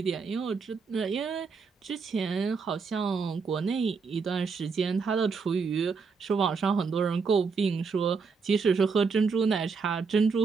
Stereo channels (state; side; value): quieter; left; 5.1 dB